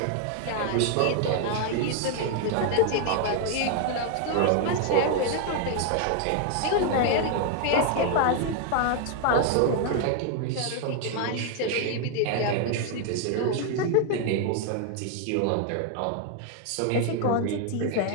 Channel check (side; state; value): both; different; correlation 0.00